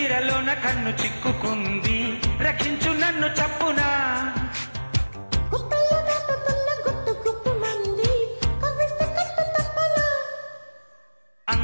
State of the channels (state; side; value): inverted; both; correlation -1.00